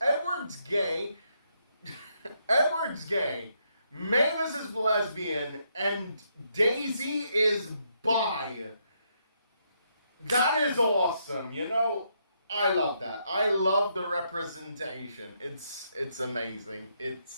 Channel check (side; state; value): both; inverted; correlation -0.76